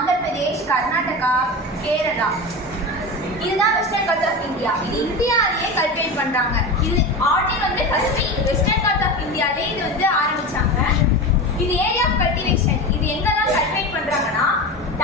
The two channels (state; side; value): normal; both; correlation 0.25